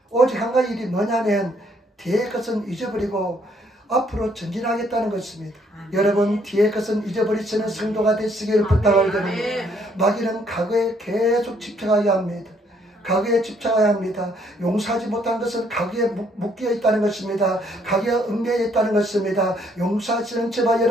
오직 한 가지 일이 뭐냐면 뒤의 것은 잊어버리고 앞으로 전진하겠다는 것입니다. 여러분, 뒤의 것은 잊어버리시는 성도가 되시기를 부탁을 드립니다. 마귀는 과거에 계속 집착하게 합니다. 과거에 집착해야 합니다. 용서하지 못한 것은 과거에 묶여 있다는 것입니다. 과거에 얽매여 있다는 것입니다. 용서하시는 제발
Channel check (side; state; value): both; normal; correlation 0.67